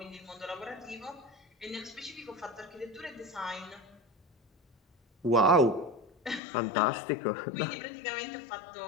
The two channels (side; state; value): right; drops out; at 6.4 s